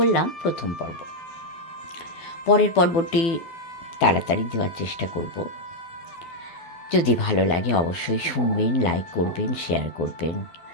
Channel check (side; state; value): right; late; 12 ms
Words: প্রথম পর্ব। পরের পর্বটি তাড়াতাড়ি দেওয়ার চেষ্টা করব। যদি ভালো লাগে অবশ্যই শুনবেন, লাইক করবেন, শেয়ার করবেন,